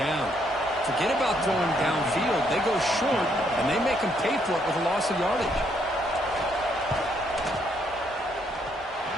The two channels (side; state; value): both; normal; correlation 0.72